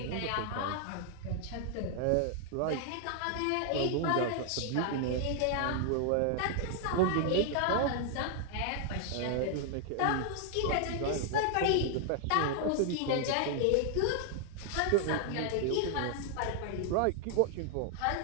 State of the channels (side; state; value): both; different; correlation 0.00